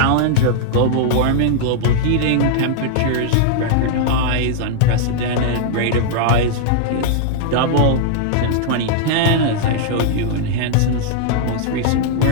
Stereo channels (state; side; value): different; both; correlation -0.01